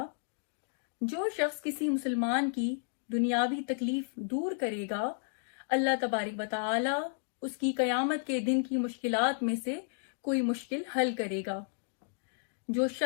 جو شخص کسی مسلمان کی دنیاوی تکلیف دور کرے گا، اللہ تبارک و تعالی اس کی قیامت کے دن کی مشکلات میں سے کوئی مشکل حل کرے گا۔ جو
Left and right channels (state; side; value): silent; right; digital silence